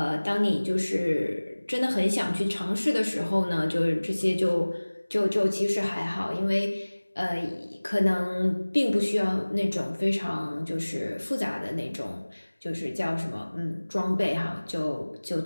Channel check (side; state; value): both; inverted; correlation -1.00